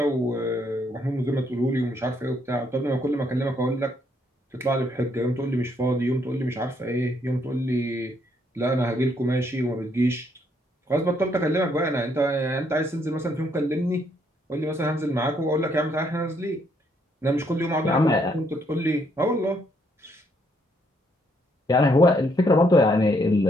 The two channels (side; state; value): both; normal; correlation 0.72